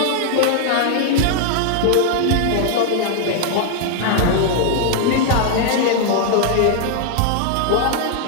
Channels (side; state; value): both; different; correlation 0.00